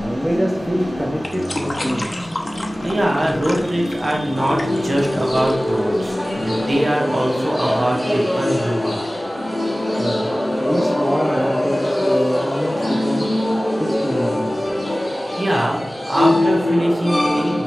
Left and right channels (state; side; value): normal; both; correlation 0.97